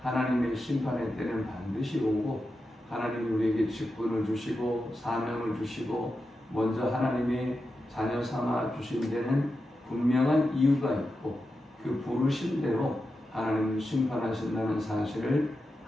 하나님의 심판의 때는 반드시 오고 하나님이 우리에게 직분을 주시고 사명을 주시고 먼저 하나님의 자녀 삼아 주신 데는 분명한 이유가 있고 그 부르신 대로 하나님을 심판하신다는 사실을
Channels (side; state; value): both; normal; correlation 0.90